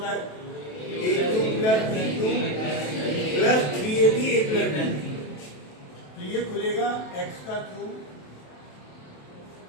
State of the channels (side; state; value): right; late; 27 ms